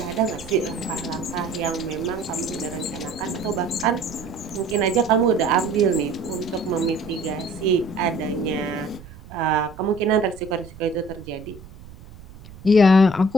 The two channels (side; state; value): right; noise; rumble, 18 dB below the sound